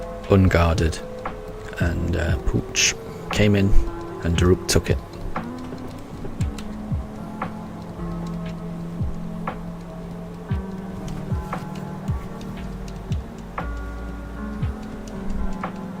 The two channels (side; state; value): both; identical; correlation 1.00